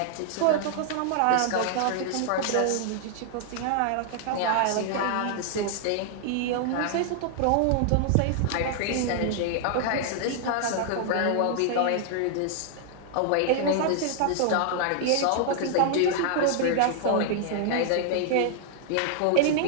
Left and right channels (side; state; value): both; different; correlation -0.01